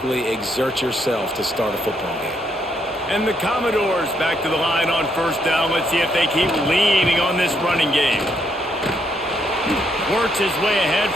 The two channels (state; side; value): normal; both; correlation 0.74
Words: exert yourself to start a football game. And the Commodores back to the line on 1st down. Let's see if they keep leaning on this running game. Works his way ahead